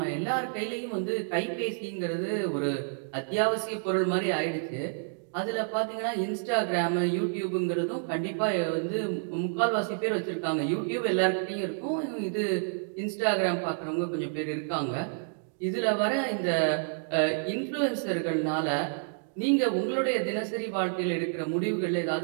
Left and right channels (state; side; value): silent; left; digital silence